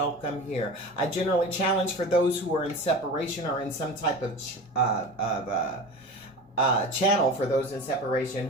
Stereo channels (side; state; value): both; normal; correlation 0.32